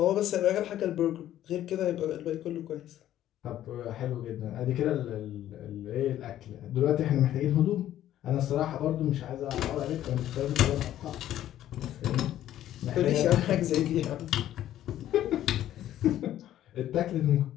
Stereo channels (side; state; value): right; quieter; 12.4 dB